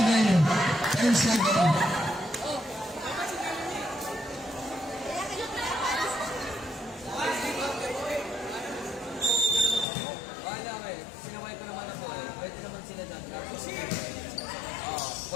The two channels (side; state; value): right; drops out; at 9.9 s